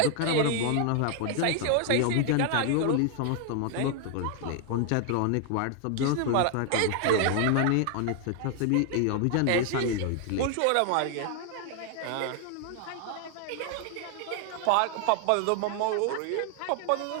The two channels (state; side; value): different; both; correlation 0.00